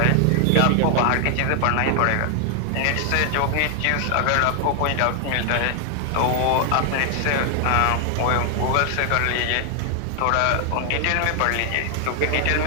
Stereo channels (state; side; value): different; both; correlation 0.00